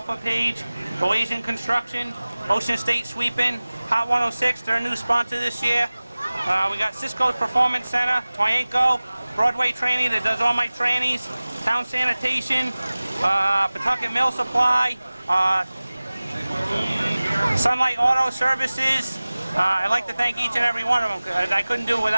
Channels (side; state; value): both; inverted; correlation -0.99